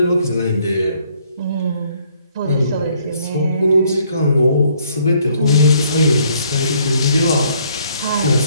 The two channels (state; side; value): inverted; both; correlation -0.66